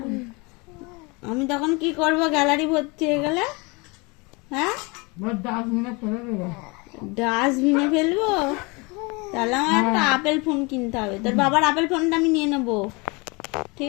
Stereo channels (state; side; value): quieter; right; 27.8 dB